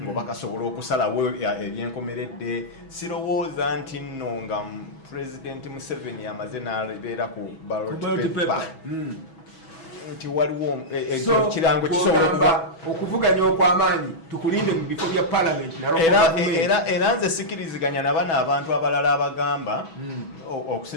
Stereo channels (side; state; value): right; late; 6.1 ms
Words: ng'oba kasobola okusalawo ebyenkomeredde sirowooza nti nno nga Pulezidenti Museveni amaze n'abeera ku ballot paper nti waliwo kirango kisobola okuvuganya okw'amaanyi tukulinde mu bifo bya palamenti era nze sikiriziganya nabana abantu abalala abagamba